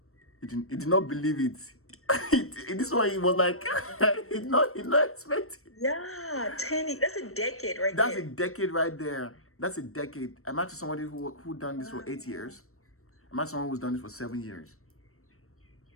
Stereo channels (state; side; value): late; right; 0.63 ms